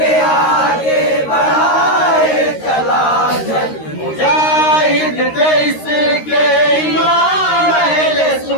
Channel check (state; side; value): late; right; 13 ms